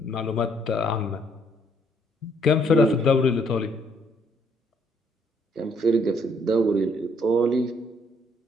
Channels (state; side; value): normal; both; correlation 0.67